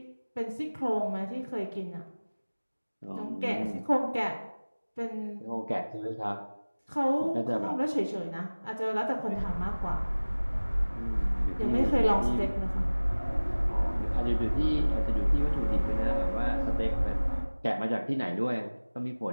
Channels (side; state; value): both; inverted; correlation -1.00